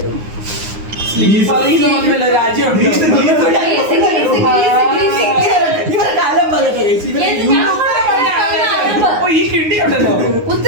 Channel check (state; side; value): late; left; 9.6 ms